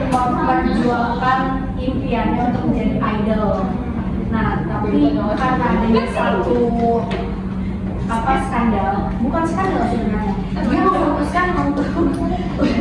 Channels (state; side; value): identical; both; correlation 1.00